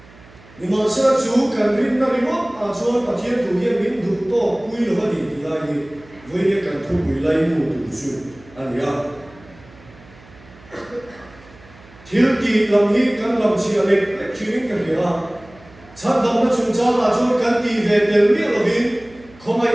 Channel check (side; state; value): right; noise; hum, 24 dB below the sound